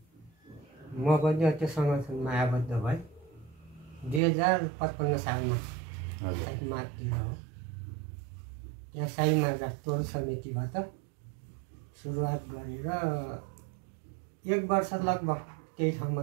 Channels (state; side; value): drops out; left; at 4.2 s